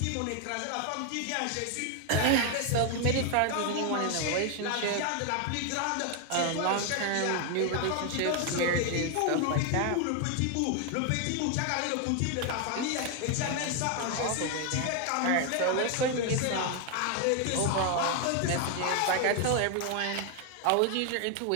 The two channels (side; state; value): both; different; correlation 0.01